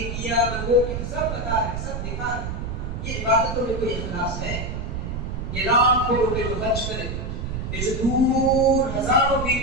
کیا, میں وہ کیا, سب بتا رہے, سب دکھا رہے. یہ عبادتوں میں کوئی اخلاص ہے؟ یہ لاکھوں روپے جو خرچ کرے, یہ جو دور ہزاروں میل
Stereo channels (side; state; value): right; noise; rumble, 5 dB below the sound